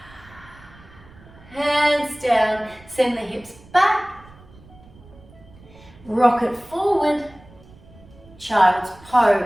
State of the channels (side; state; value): right; noise; rumble, 23 dB below the sound